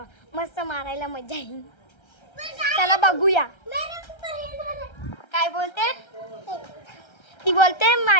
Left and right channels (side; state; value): right; late; 1.3 ms